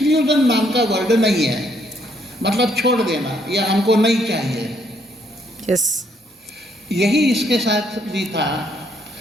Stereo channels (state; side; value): normal; both; correlation 0.70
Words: नाम का वर्ड नहीं है, मतलब छोड़ देना या हमको नहीं चाहिए। यस। यही इसके साथ भी था।